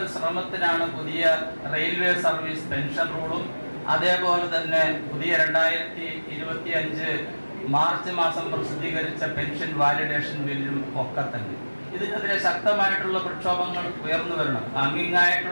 ശ്രമത്തിനാണ് പുതിയ റെയിൽവേ സർവീസ് പെൻഷൻ റൂളും അതേപോലെ തന്നെ പുതിയ 2025 മാർച്ച് മാസം പ്രസിദ്ധീകരിച്ച പെൻഷൻ വാലിഡേഷൻ ബില്ലും ഒക്കെ തന്നെ. ഇതിനെതിരെ ശക്തമായിട്ടുള്ള പ്രക്ഷോഭങ്ങൾ ഉയർന്നു വരണം.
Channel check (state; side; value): inverted; both; correlation -1.00